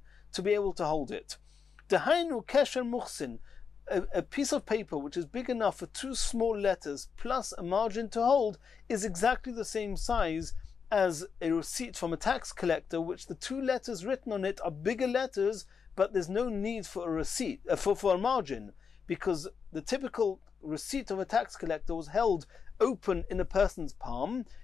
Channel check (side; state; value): right; quieter; 6.1 dB